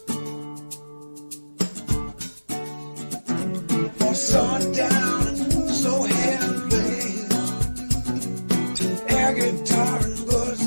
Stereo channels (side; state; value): both; inverted; correlation -1.00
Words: for sundown and slow hand play, air guitar and